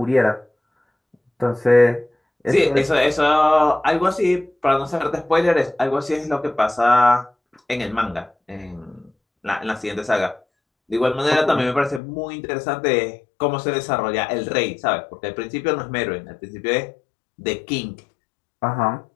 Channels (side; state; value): right; drops out; at 12.0 s